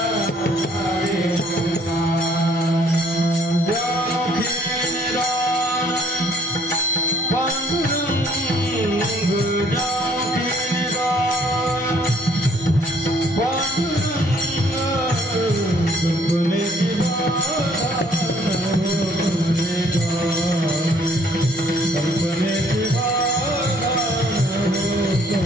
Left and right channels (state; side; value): normal; both; correlation 0.62